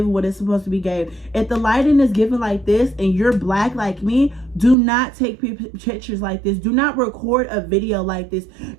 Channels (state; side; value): drops out; left; at 4.8 s